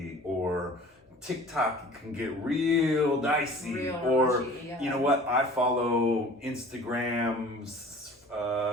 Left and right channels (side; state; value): both; normal; correlation 0.45